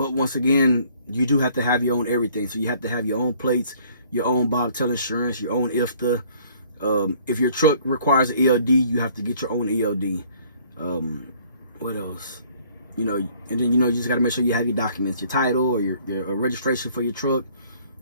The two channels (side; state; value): both; inverted; correlation -0.58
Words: once again, you do have to have your own everything. So you have to have your own plates, your own bobtail insurance, your own IFTA. If your truck requires an ELD, you have to get your own ELD. What else? You know, and then, you know, you just got to make sure you have your documents, your title or your registration for your truck,